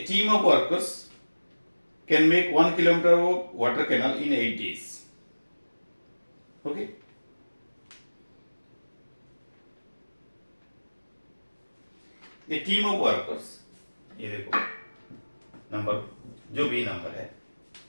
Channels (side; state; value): both; inverted; correlation -1.00